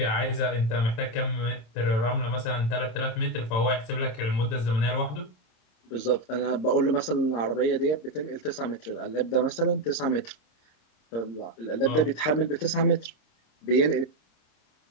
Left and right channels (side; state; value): right; late; 26 ms